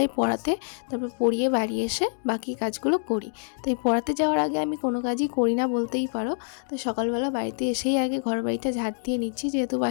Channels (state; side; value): silent; right; digital silence